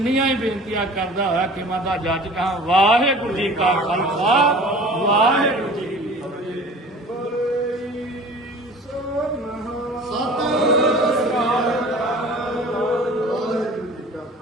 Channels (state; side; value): normal; both; correlation 0.43